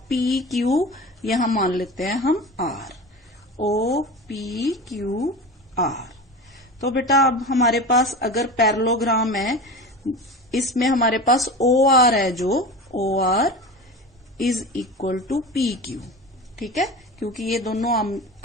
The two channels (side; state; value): both; normal; correlation 0.30